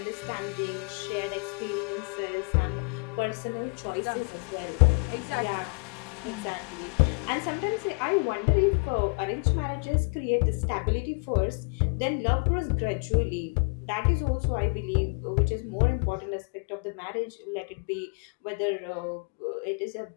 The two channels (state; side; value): quieter; right; 35.6 dB